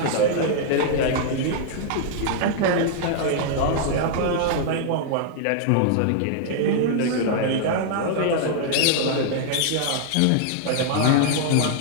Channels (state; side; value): different; both; correlation -0.01